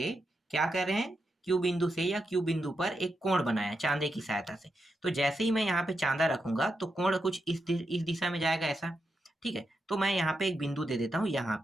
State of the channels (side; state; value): both; normal; correlation 0.85